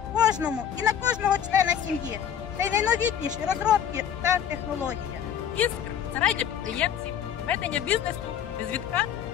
кожному і на кожного члена сім'ї. Це найновітніші розробки та технології. Іскр – це рай для підприємців, ведення бізнесу, без відкат,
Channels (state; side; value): quieter; right; 9.0 dB